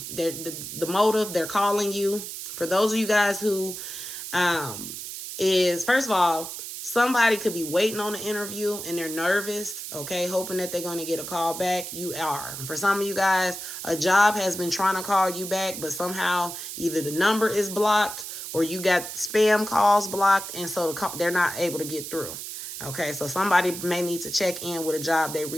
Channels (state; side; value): noise; right; hiss, 8 dB below the sound